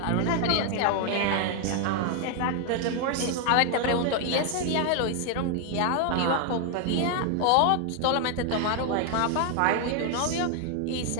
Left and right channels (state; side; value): different; both; correlation 0.00